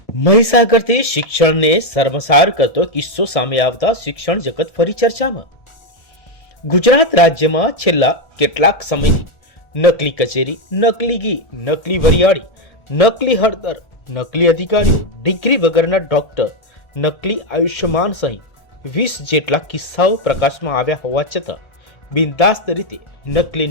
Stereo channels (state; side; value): late; right; 1.4 ms